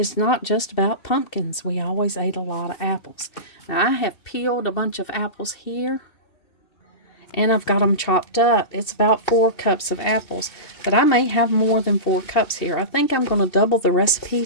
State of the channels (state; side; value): late; right; 2.7 ms